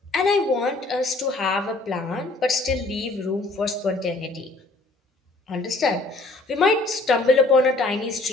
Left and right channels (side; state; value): right; quieter; 3.0 dB